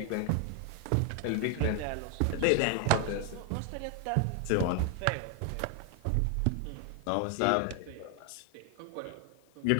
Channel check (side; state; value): both; different; correlation 0.00